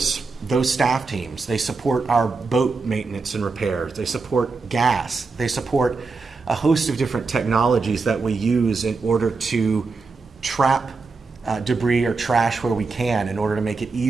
those staff teams. They support our boat maintenance and repairs. They support gas. They support a host of different technologies that we use in order to trap debris or trash where we can in order to make it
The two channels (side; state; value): left; quieter; 4.2 dB